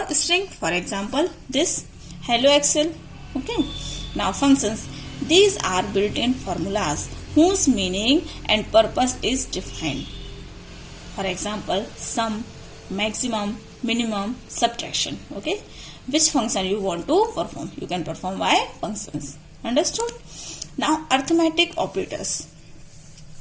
string, for example this hello Excel. Okay. Now functions, these are built-in formulas whose meaning and purpose is defined. For example, sum, maximum, minimum, subtraction. Okay, which function you want to perform, you can perform by functions. Understood? Now arithmetic operators.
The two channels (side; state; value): both; identical; correlation 1.00